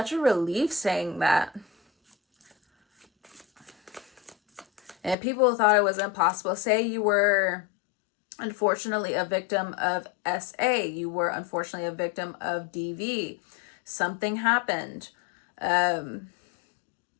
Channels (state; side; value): drops out; right; at 5.2 s